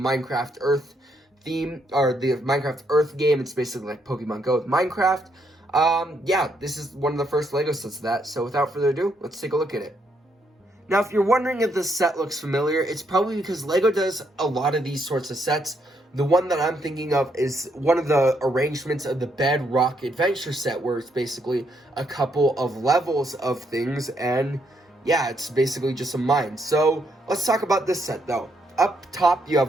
Earth theme, or the Minecraft Earth game, it's basically like Pokemon Go with Minecraft. Yeah, this is one of the first LEGO sets of that. So without further ado, let's take a look at it. Now, if you're wondering if this set looks familiar, it's probably because LEGO does a lot of these sorts of sets. The one that I'm thinking of is one of the arrangements of the Bedrock Adventure set, where it's basically a couple of levels of things, and yeah, it's basically just a mine. So, let's talk about this set, though. Up top, you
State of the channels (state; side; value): normal; both; correlation 0.75